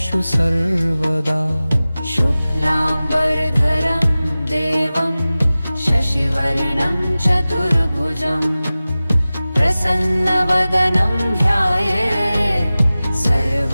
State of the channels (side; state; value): both; inverted; correlation -0.97